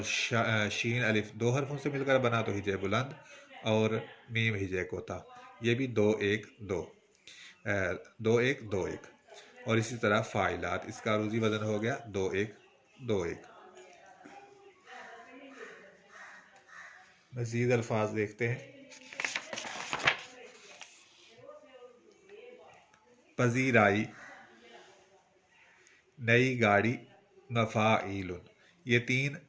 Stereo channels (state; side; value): identical; both; correlation 1.00